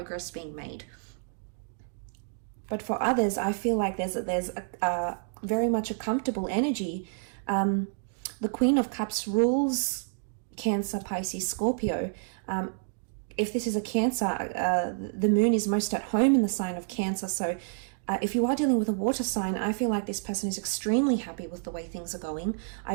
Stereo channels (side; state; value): left; silent; digital silence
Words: being made. But for others, I feel like there's a very much a comfortable energy. The Queen of Cups rules Cancer, Pisces, Scorpio. If this is a Cancer, the moon is most at home in the sign of Cancer. So if you are dealing with a water sign, I feel like this person is extremely happy with the way things are going.